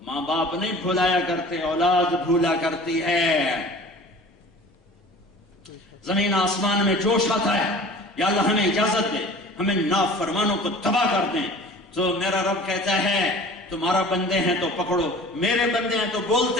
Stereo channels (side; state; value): both; normal; correlation 0.44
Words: ماں باپ نہیں بھلایا کرتے، اولاد بھولا کرتی ہے۔ زمین آسمان میں جوش آتا ہے، یا اللہ ہمیں اجازت دے ہمیں نافرمانوں کو تباہ کر دیں، تو میرا رب کہتا ہے تمہارا بندے ہیں تو پکڑو، میرے بندے ہیں تو